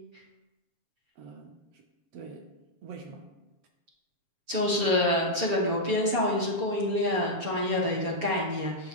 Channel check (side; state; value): left; late; 7.0 ms